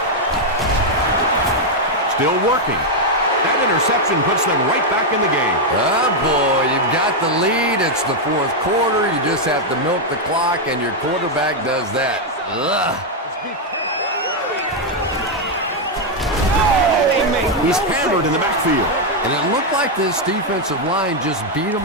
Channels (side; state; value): both; normal; correlation 0.01